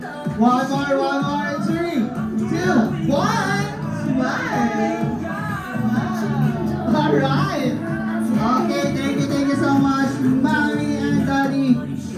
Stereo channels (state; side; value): identical; both; correlation 1.00